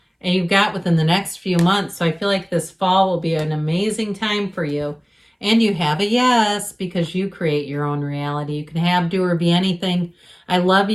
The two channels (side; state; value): both; identical; correlation 1.00